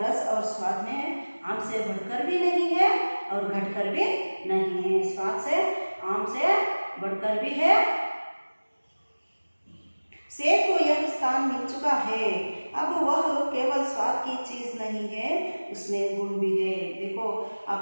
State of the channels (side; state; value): both; inverted; correlation -1.00